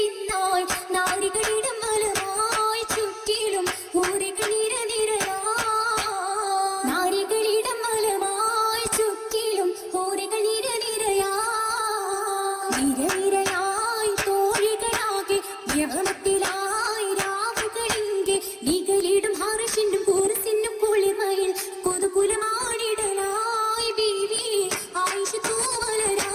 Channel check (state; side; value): identical; both; correlation 1.00